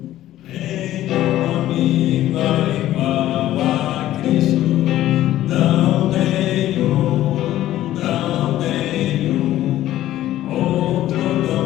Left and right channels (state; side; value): quieter; right; 13.8 dB